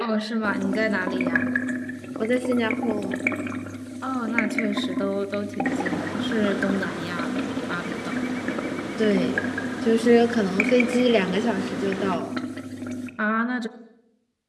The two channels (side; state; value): both; identical; correlation 1.00